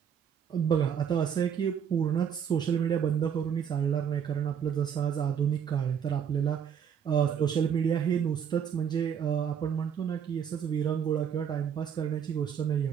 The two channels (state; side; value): quieter; left; 8.1 dB